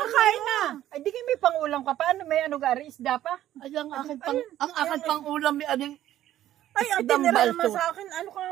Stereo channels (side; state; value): left; quieter; 12.8 dB